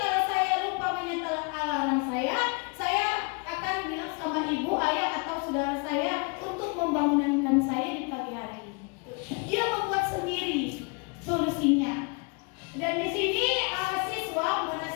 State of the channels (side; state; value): right; quieter; 32.6 dB